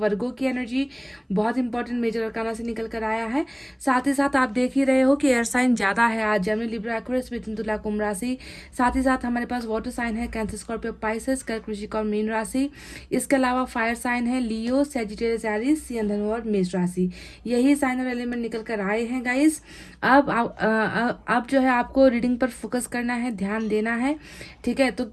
की एनर्जी बहुत इंपॉर्टेंट मेजर अरकाना से निकल कर आया है। साथ ही साथ आप देख ही रहे हो कि एयर साइन ज़्यादा है आज, जेमिनी, लिब्रा, एक्वेरियस, मिथुन, तुला, कुंभ राशि। साथ ही साथ हमारे पास वाटर साइन है, कैंसर, स्कॉर्पियो, पाइसेस, कर्क, वृश्चिक और मीन राशि। इसके अलावा फायर साइन है, लियो, सेजिटेरियस, एरीज, सिंह, धनु और मेष राशि। यही साइन और एलिमेंट निकल कर आए हैं गाइस। अब जो है आपको रीडिंग पर फोकस करना है, ध्यान देना है, ठीक है। तो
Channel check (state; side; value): identical; both; correlation 1.00